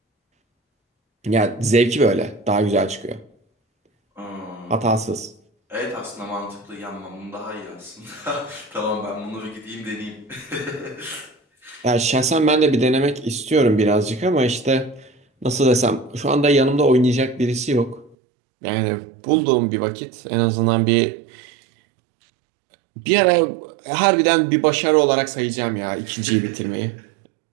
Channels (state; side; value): drops out; left; at 18.2 s